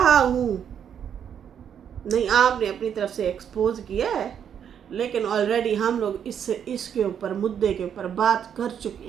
हूँ। नहीं, आपने अपनी तरफ से एक्सपोज किया है, लेकिन ऑलरेडी हम लोग इसके ऊपर, मुद्दे के ऊपर बात कर चुके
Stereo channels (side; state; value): left; quieter; 8.5 dB